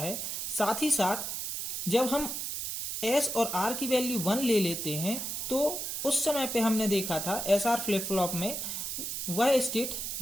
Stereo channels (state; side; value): noise; right; hiss, 4 dB below the sound